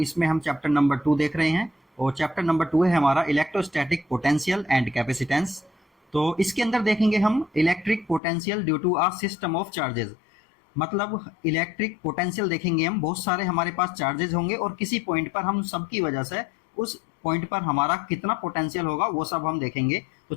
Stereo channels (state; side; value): drops out; right; at 8.2 s